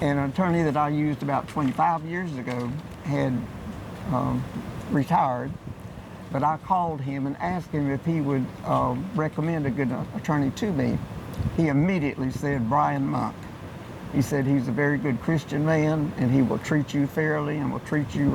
an attorney that I used about 25 years ago had retired, but I called him and asked him if he would recommend a good attorney to me. He immediately said Brian Monk. He said he's a very good Christian man, and he will treat you fairly and will treat you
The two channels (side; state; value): both; identical; correlation 1.00